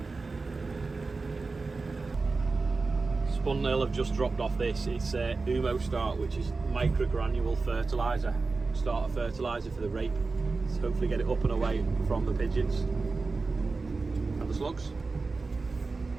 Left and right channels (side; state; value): left; quieter; 3.9 dB